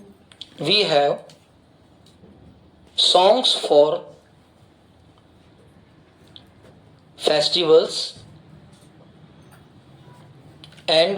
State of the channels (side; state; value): both; identical; correlation 1.00